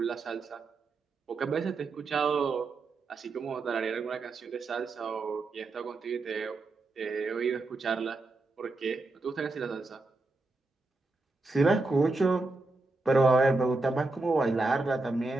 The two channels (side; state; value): left; quieter; 3.3 dB